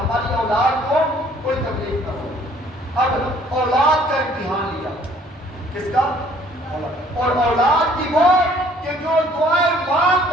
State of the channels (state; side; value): normal; both; correlation 0.58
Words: اولاد کو کوئی تکلیف نہ ہو۔ اب اولاد کا امتحان لیا، کس کا؟ اور اولاد کی وہ کہ جو دعائیں مانگ